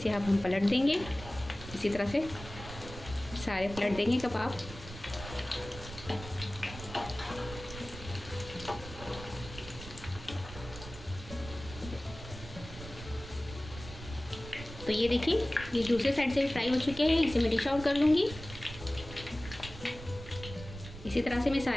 अब हम पलट देंगे। इसी तरह से सारे पलट देंगे कबाब। तो ये देखिए ये दूसरे साइड से भी फ्राई हो चुके हैं, इसे मैं डिश आउट कर लूँगी। इसी तरह से मैं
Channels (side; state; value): right; noise; rumble, 13 dB below the sound